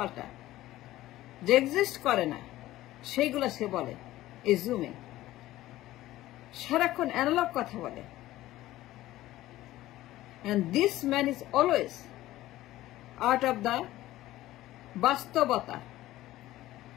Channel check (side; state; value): right; quieter; 15.7 dB